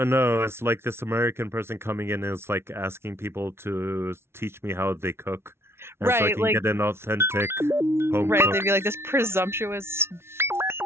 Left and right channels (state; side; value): late; left; 0.12 ms